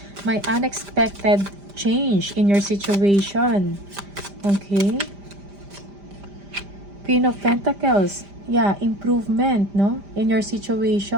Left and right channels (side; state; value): left; late; 5.0 ms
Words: May unexpected change in your situation. Okay? Queen of Pentacles. Yeah, improvement, no? In your